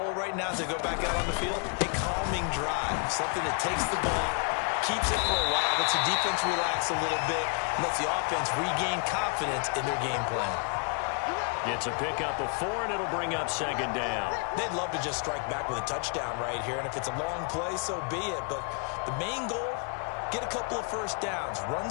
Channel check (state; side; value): quieter; right; 39.2 dB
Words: right now as they go back out on the field, a calming drive, something that takes the ball, keeps it for a while, lets the defense relax a little bit, and lets the offense regain confidence in their game plan. Gets a pickup of 4, and it'll bring up 2nd down. They'd love to just strike back with a touchdown right here, and if it's a long play, so be it. But the main goal, get a couple of 1st downs, run